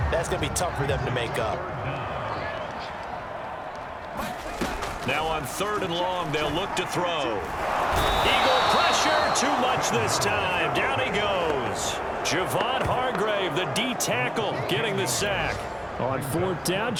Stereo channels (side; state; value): both; identical; correlation 1.00